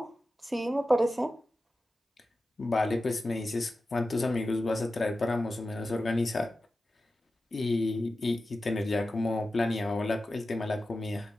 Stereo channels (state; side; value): normal; both; correlation 0.93